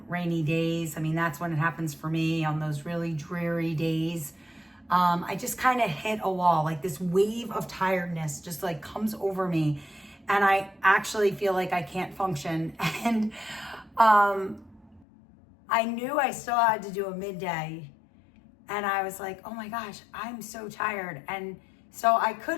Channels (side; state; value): right; drops out; at 15.1 s